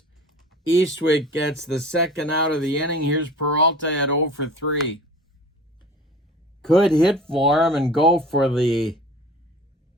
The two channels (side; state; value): both; normal; correlation 0.41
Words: Eastwick gets the second out of the inning. Here's Peralta at 0 for 3. Could hit for him and go for the